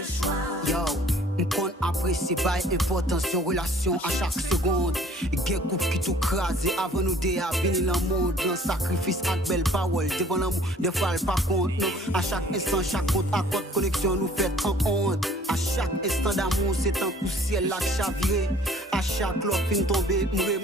choix. Yo, m'kon apprécie pas importance de relation à chaque seconde. Gen couple qui tout crasé avant nous de venir dans le monde. Dans sacrifice avec belle parole, devant l'amour, des fois elle pas compte. Non, à chaque instant, chaque compte à compte connexion nous fait en honte. À chaque instant d'amour, c'est un coup ciel là chaviré. À chaque l'offre fin tomber, me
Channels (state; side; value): normal; both; correlation 0.55